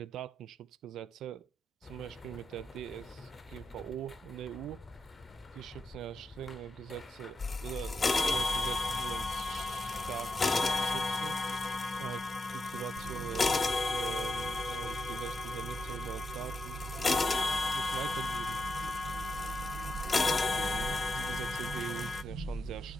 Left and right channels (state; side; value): normal; both; correlation 0.86